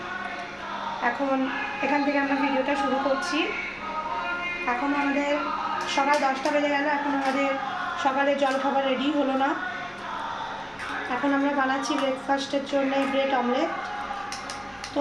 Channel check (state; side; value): identical; both; correlation 1.00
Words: এখন এখান থেকে আমরা ভিডিওটা শুরু করছি। এখন আমাদের সকাল 10টা বেজে গেল, এখন আমাদের সকালে জলখাবার রেডি হলো না। এখন আমরা বানাচ্ছি ব্রেকফাস্টের জন্য ব্রেড অমলেট।